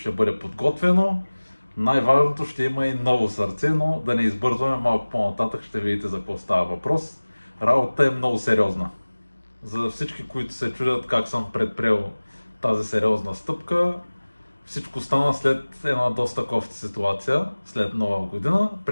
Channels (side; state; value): both; inverted; correlation -1.00